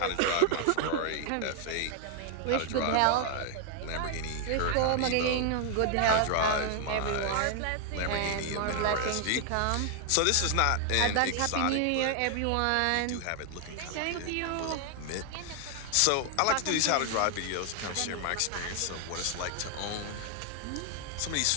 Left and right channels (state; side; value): different; both; correlation 0.00